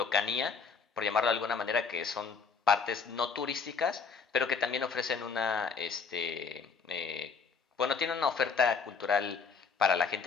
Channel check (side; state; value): right; quieter; 5.4 dB